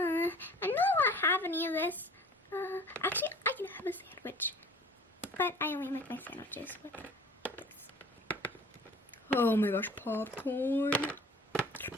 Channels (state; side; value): normal; both; correlation 0.47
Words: know I won't have any of this. Actually, I can have a sandwich. But I only make my sandwiches with this. Oh my gosh, popcorn.